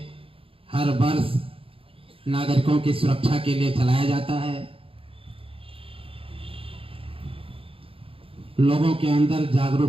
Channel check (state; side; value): late; left; 0.27 ms